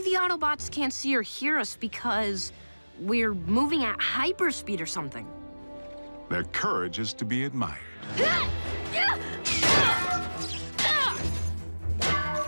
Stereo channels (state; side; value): inverted; both; correlation -1.00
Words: the Autobots can't see or hear us because we're moving at hyperspeed or something. Their courage is to be admired.